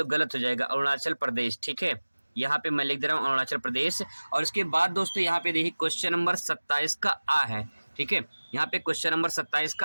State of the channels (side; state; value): both; inverted; correlation -1.00